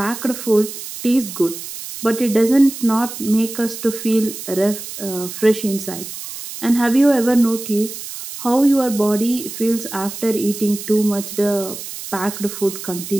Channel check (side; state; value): right; noise; hiss, 10 dB below the sound